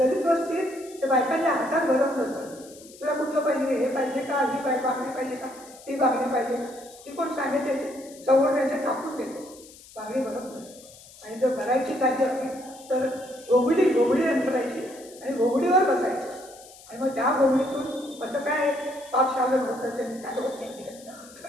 वस्तीत ते बायकांच्या हातात भरत नसतं. तुला कुठलं पाहिजे, हे पाहिजे का, ही बांगडी पाहिजे का, ती बांगडी पाहिजे का, ती कोण सांगितले सवड त्यांच्या कापून देते, बांगडी भरत नसते. आणि जर भरायची साधी असली तर घोगडी अंतरायची आणि घोगडीवर बसायचं. आणि मग त्या घोगडीतून असं काय पाप शालं होतं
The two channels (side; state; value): left; noise; hiss, 21 dB below the sound